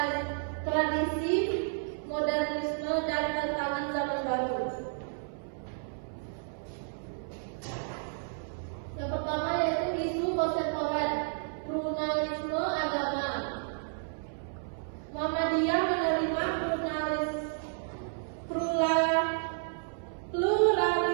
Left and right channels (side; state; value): left; silent; 57 dB below the other